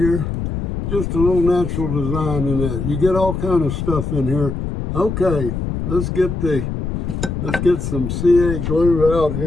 Just a little natural design in that. You get all kind of stuff in here. Okay, let's get some CA glue out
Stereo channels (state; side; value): noise; left; rumble, 3 dB below the sound